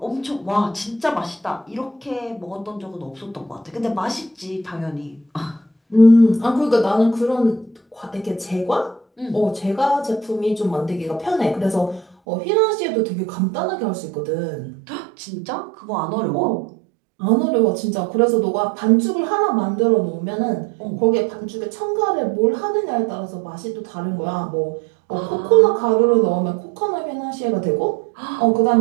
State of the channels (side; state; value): left; drops out; at 12.2 s